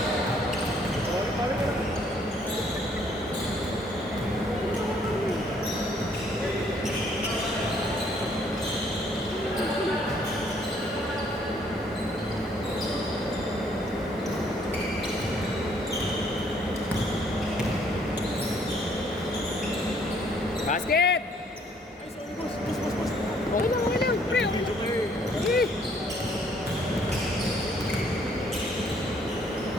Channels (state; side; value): normal; both; correlation 0.64